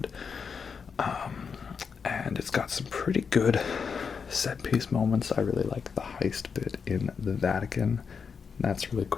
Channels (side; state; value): right; quieter; 6.0 dB